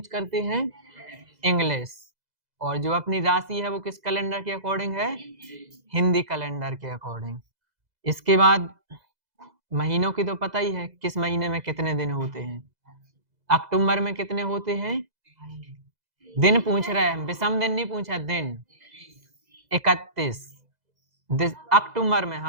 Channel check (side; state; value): left; late; 2.0 ms